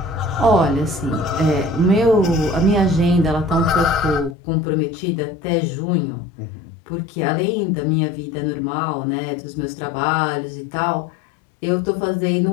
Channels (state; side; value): drops out; right; at 4.4 s